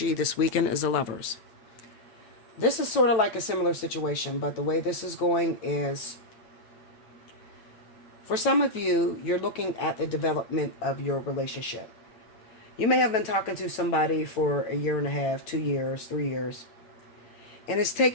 this weekend is the Lovers. This is sort of like a similar situation, but the way this is going is, for some of you, you're looking at the development of your relationship. You may have been talking to somebody for a year and a half, 2 years, 3 years. And it's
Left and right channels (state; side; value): late; right; 9.0 ms